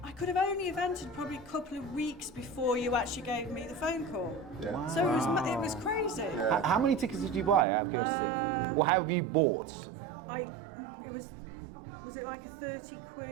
I could have only entered probably a couple of weeks before you actually gave me the phone call. Yeah. Wow. So it was crazy. Yeah. How many tickets did you buy out of curiosity? Or have you bought? Was it like a £30,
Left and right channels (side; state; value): left; drops out; at 7.7 s